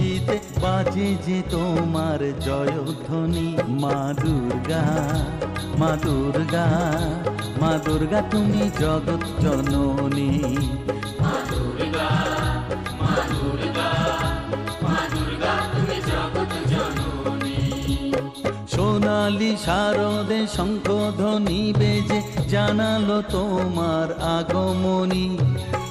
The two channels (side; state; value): both; identical; correlation 1.00